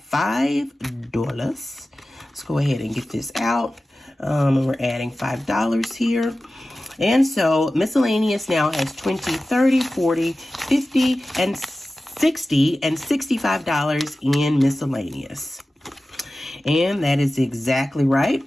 Let's go ahead and get this out. And we're adding $5 here. And so miscellaneous now has 20, 30, 40, 50, and 60, and $65 in miscellaneous. And that is exactly right.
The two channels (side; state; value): both; normal; correlation 0.95